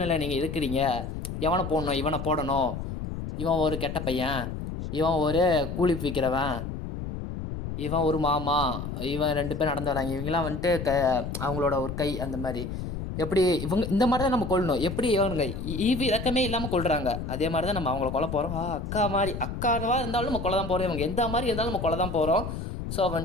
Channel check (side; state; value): left; noise; rumble, 6 dB below the sound